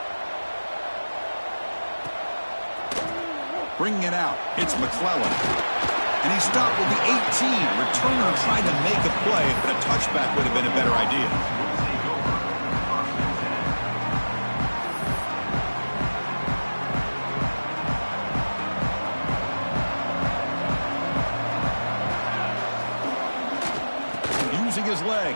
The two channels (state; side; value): inverted; both; correlation -1.00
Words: Bringing it out, it's McClellan. And he stopped with the 18. Returner trying to make a play, but a touchback would have been a better idea. Using his